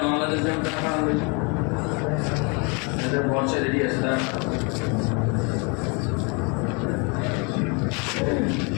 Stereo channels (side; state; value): right; quieter; 32.6 dB